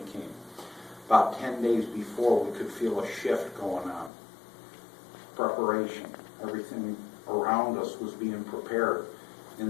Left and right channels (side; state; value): right; drops out; at 4.1 s